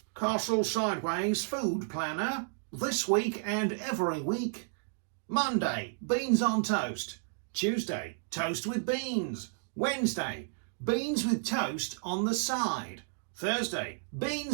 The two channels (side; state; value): left; silent; digital silence